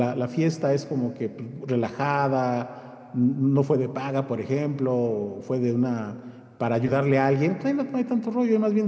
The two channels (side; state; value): both; identical; correlation 1.00